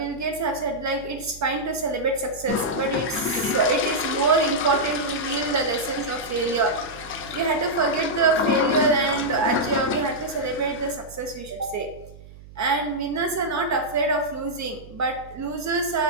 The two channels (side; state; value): right; noise; hum, 19 dB below the sound